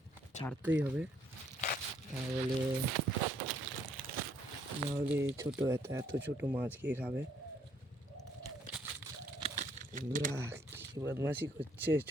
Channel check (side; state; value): both; normal; correlation 0.67